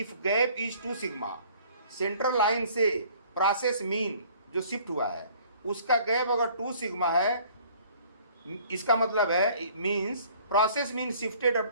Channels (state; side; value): inverted; both; correlation -0.55